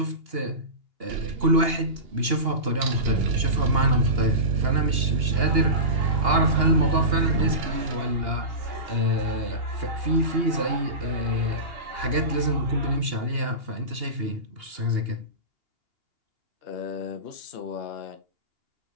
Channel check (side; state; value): left; late; 2.8 ms